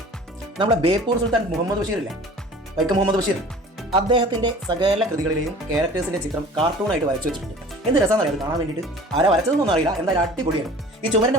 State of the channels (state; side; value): normal; both; correlation 0.45